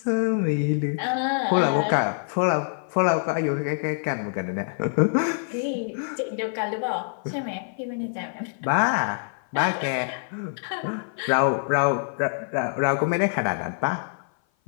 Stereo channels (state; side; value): silent; right; 56 dB below the other